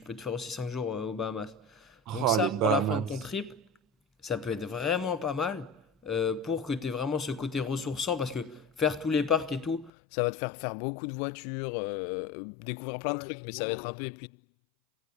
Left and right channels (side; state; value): right; drops out; at 9.9 s